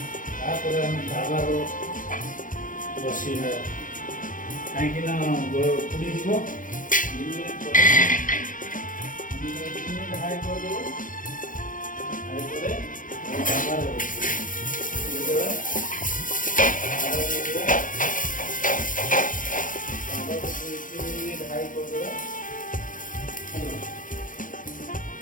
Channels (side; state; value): right; late; 0.39 ms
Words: ତାପରେ ଆମେ ତାୱାର ବସେଇବା କାହିଁକି ନା ପୋଡ଼ିଯିବ। 2 ମିନିଟ୍ ପରେ हाई कर दे हाई करे तावा देबा तावा देबा तावा को 3 मिनट हाई कर देबा।